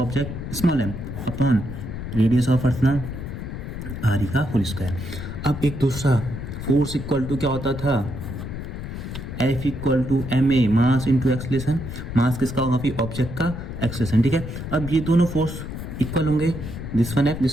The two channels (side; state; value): left; noise; rumble, 7 dB below the sound